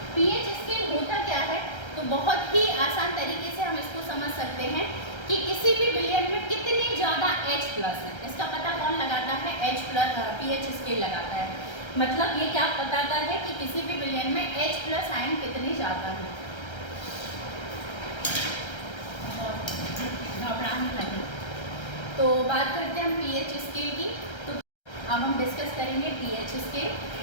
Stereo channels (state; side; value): late; right; 1.3 ms